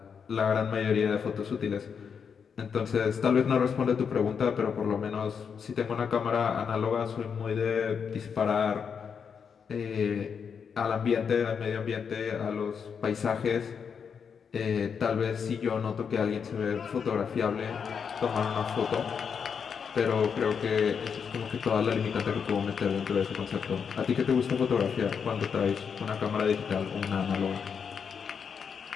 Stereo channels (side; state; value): right; quieter; 6.6 dB